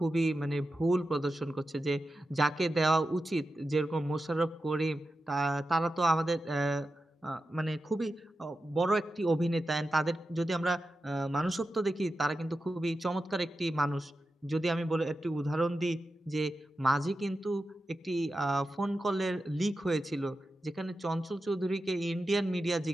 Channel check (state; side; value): normal; both; correlation 0.91